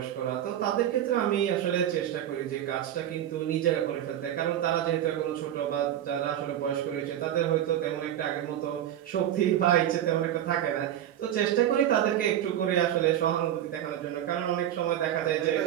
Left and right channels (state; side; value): quieter; left; 11.2 dB